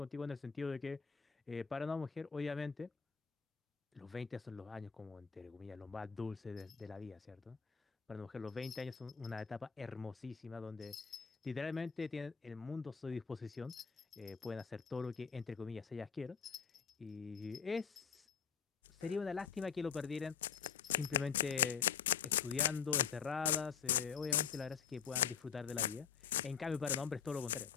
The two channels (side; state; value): right; quieter; 6.8 dB